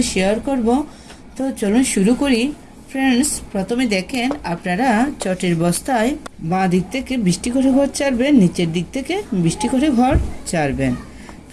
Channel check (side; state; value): both; identical; correlation 1.00